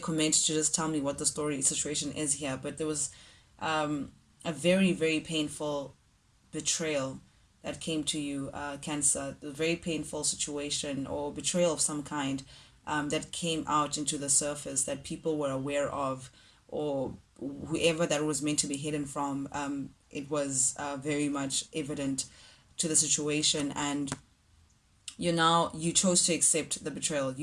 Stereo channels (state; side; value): identical; both; correlation 1.00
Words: to just tell me what the story situation is here. But there was a very, very painful betrayal that came to you, Cancer. A very painful situation or betrayal of some kind, that came out into the surface that people were aware of, or whoever that was meant to be hidden from. It was very much evident to the situation, and you chose to accept the betrayal.